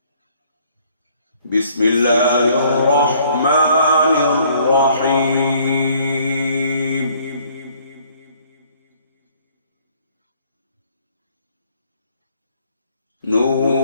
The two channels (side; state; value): both; inverted; correlation -0.61